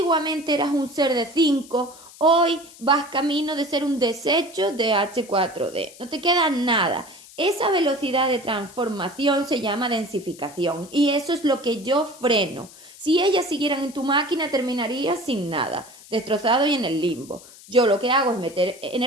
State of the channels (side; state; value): left; noise; hiss, 20 dB below the sound